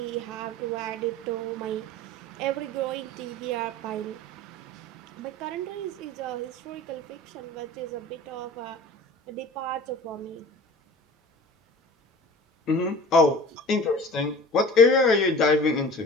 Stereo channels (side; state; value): both; normal; correlation 0.40